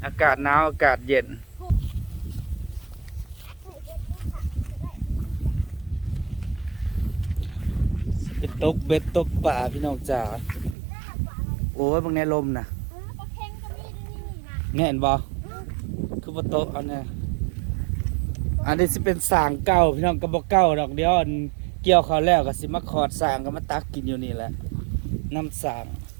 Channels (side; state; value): left; drops out; at 10.8 s